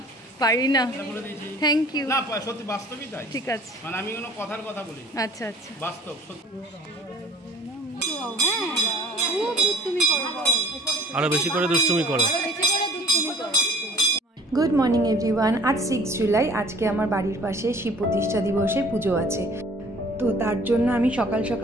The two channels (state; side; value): normal; both; correlation 0.51